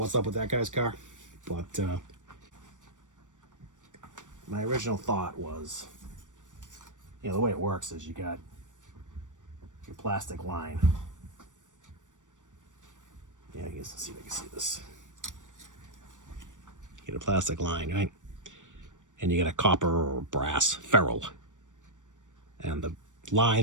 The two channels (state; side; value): late; left; 0.87 ms